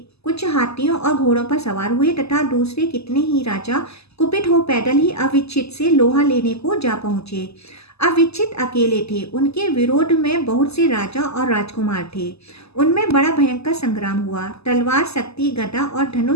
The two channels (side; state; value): right; late; 0.79 ms